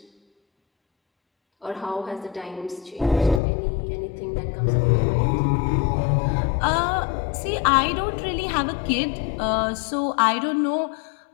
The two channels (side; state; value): right; drops out; at 3.4 s